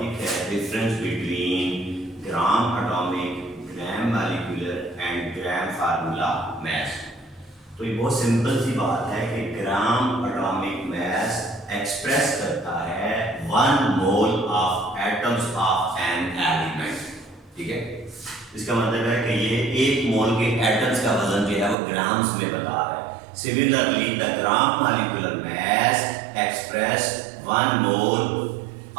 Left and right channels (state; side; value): drops out; left; at 21.8 s